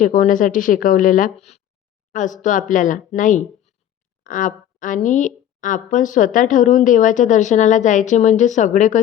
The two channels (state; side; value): quieter; right; 10.8 dB